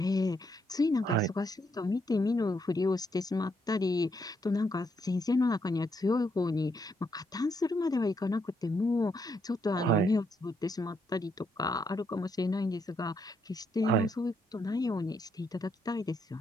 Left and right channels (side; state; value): both; normal; correlation 0.76